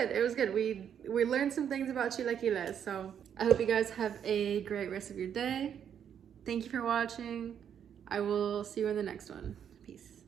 It was good. We learned some things about chilaquiles. So I hope you guys have a great rest of your day. Thank you for watching. I will see you in the next one.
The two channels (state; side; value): quieter; left; 8.6 dB